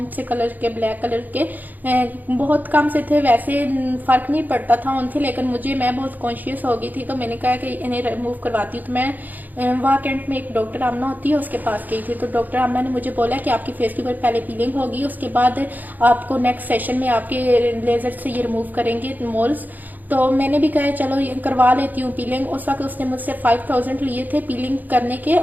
से कलर के, ब्लैक कलर के, बहुत कम से थे। वैसे फर्क नहीं पड़ता था उनसे, लेकिन मैं बहुत कॉन्शियस हो गई थी, तो मैंने कहा कि इन्हें रिमूव करवाती हूँ। तो मैं वहाँ कैंट में एक डॉक्टर आमना होती है, उसके पास गई थी। तो डॉक्टर आमना ने मुझे बोला कि आपकी फेस के ऊपर पहले पीलिंग होगी, उसके बाद आपको नेक्स्ट सेशन में आपके लेजर से ये रिमूव करेंगे मोल्स। तो मैंने भी कहा चलो ये करवा लेती हूँ पीलिंग। उस वक्त उसने मुझसे 5000 लिए थे पीलिंग करने के।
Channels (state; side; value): late; left; 0.084 ms